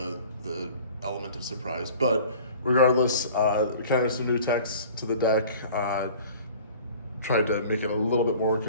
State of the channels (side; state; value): both; inverted; correlation -0.46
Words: element of surprise. But regardless, kind of some new text to the deck. Tried to make it a little bit more